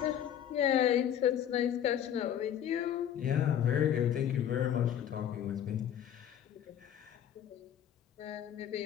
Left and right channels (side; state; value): right; quieter; 9.9 dB